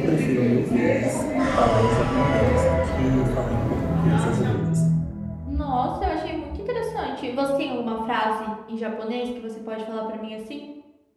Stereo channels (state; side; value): identical; both; correlation 1.00